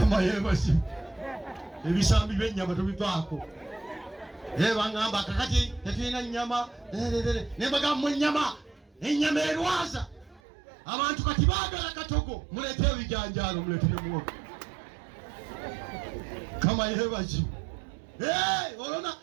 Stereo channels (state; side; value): drops out; left; at 10.4 s